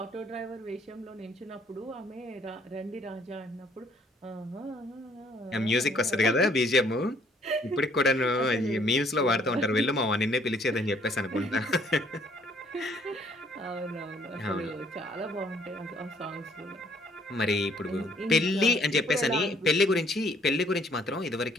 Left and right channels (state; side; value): normal; both; correlation 0.63